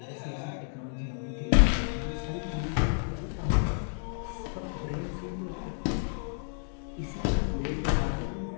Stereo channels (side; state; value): right; silent; 57 dB below the other